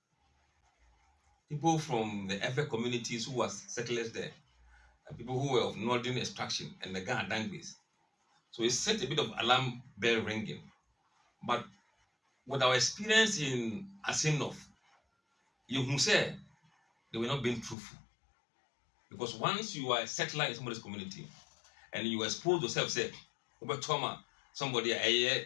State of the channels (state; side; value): drops out; right; at 17.8 s